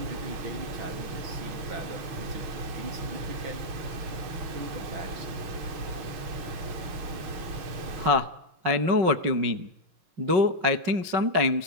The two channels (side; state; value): left; late; 6.3 ms